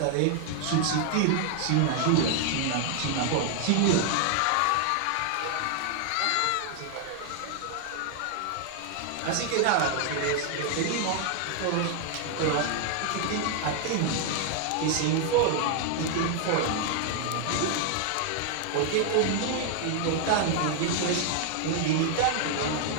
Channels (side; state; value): both; different; correlation 0.00